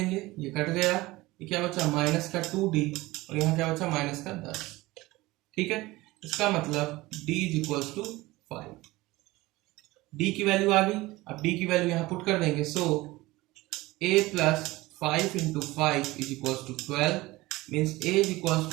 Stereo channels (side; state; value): left; quieter; 19.8 dB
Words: ये कट गया, ये क्या बचा, माइनस का 2d और यहाँ क्या बचा, माइनस का 10। ठीक है, इसका मतलब d is equals to 5। d की वैल्यू आ गई, अब d की वैल्यू यहाँ पुट कर देंगे। So a plus 5 into 5 is equals to 12, means a is equals